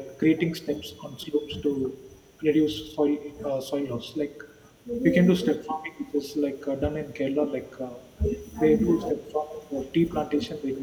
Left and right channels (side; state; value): both; identical; correlation 1.00